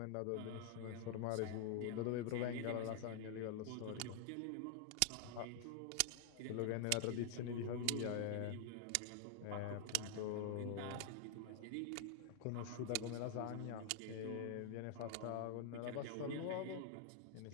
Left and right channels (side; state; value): both; different; correlation 0.00